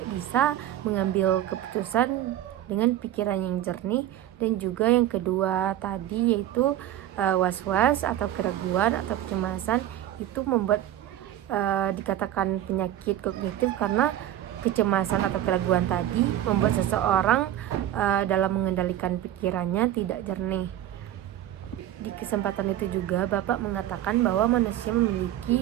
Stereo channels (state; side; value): quieter; left; 12.3 dB